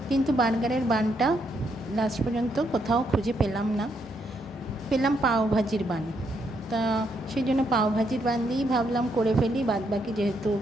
কিন্তু বার্গারের বানটা লাস্ট পর্যন্ত কোথাও খুঁজে পেলাম না। পেলাম পাওভাজির বান। তা সেই জন্য পাওভাজির বান দিয়েই ভাবলাম করে ফেলি, বাদবাকি যেহেতু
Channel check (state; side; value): normal; both; correlation 0.76